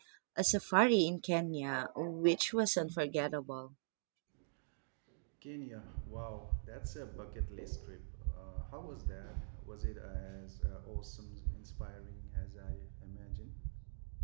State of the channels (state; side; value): silent; left; digital silence